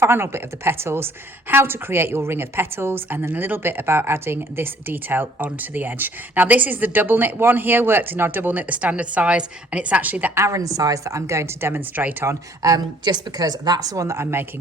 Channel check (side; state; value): both; normal; correlation 0.59